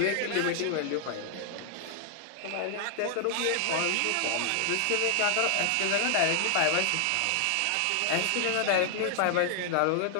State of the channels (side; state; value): both; different; correlation -0.01